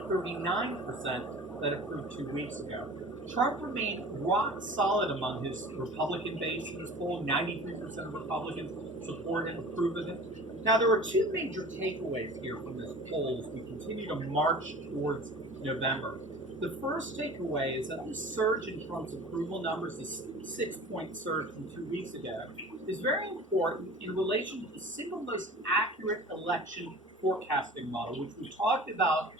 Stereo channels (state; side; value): normal; both; correlation 0.41